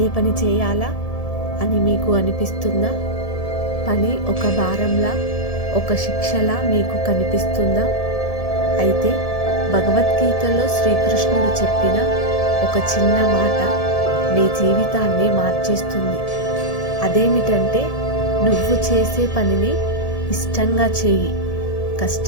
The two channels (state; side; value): late; right; 1.7 ms